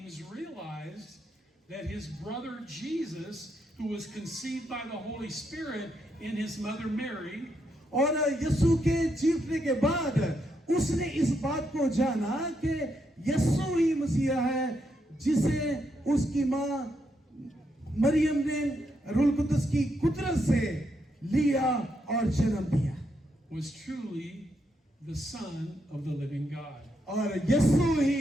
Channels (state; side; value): normal; both; correlation 0.80